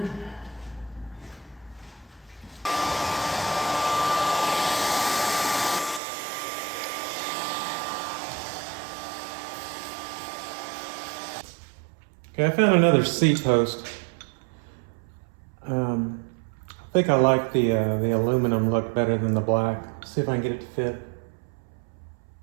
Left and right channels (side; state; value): left; drops out; at 6.0 s